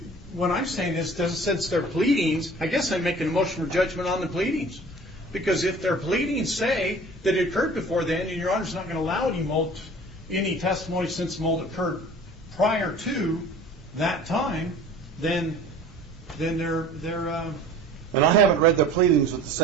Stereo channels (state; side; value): normal; both; correlation 0.45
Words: when I'm saying this, since their pleadings, I guess I'm making a motion for judgment on the pleadings. Because if their pleadings say that it occurred before then, and Your Honor's not going to allow any testimony since mold occurred prior to that time, then they're And I haven't read their pleadings with the